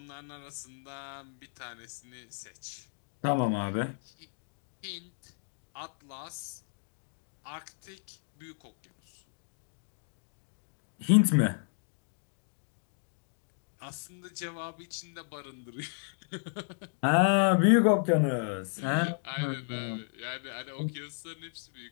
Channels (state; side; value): silent; right; digital silence